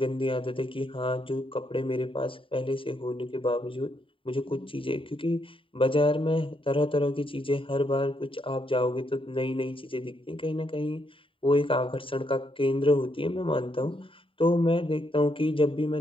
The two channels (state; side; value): late; right; 0.25 ms